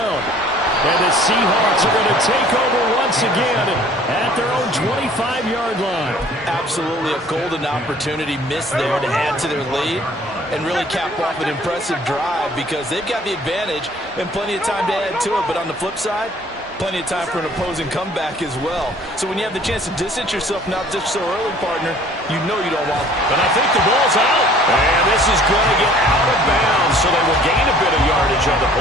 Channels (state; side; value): normal; both; correlation 0.53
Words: And the Seahawks are going to take over once again at their own 25-yard line. Absolutely a golden opportunity missed there to add to their lead. and really cap off an impressive drive because they've got the advantage and plenty of time to add to it. But on the flip side, plenty of time for an opposing comeback as well. So when you have the chance to distance yourself not just so early, partner, you know you don't want. But I think the ball's out. And this is going to get out of bounds, so they will gain a bit of yardage on the